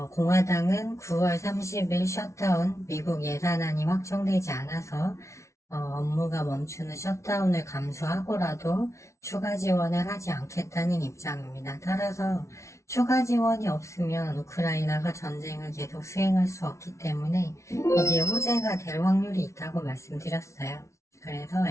공화당은 9월 30일 셧다운 미국 예산안이 확정되지 않아서 업무가 멈추는 셧다운을 감수하고라도 추가 지원을 하지 않겠다는 입장입니다. 따라서 추가 지원이 없으면 우크라이나가 전쟁을 계속 수행할 수 없기 때문에 이게 호재가 될 확률이 있다고 말씀드렸어요. 그래서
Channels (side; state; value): right; late; 0.14 ms